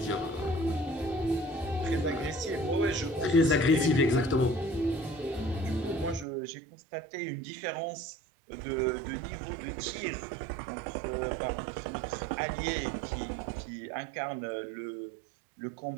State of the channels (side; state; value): left; drops out; at 6.2 s